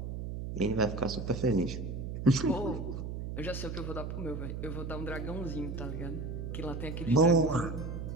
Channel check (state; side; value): noise; right; hum, 5 dB below the sound